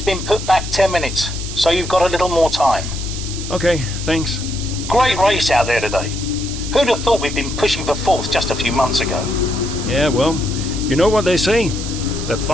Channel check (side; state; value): right; noise; hiss, 9 dB below the sound